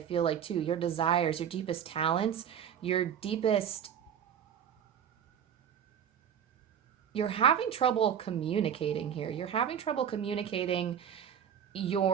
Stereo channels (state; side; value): quieter; left; 8.9 dB